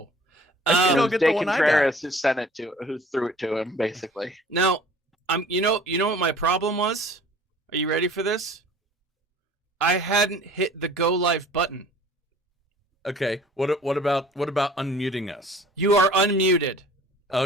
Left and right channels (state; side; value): normal; both; correlation 0.49